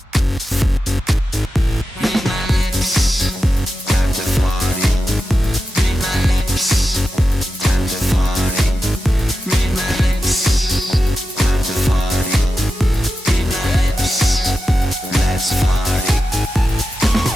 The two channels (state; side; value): normal; both; correlation 0.91